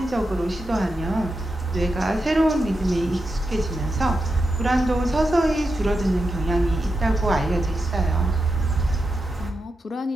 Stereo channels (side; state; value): both; normal; correlation 0.88